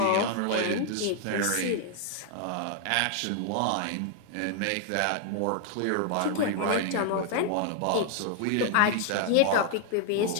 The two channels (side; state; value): both; different; correlation 0.00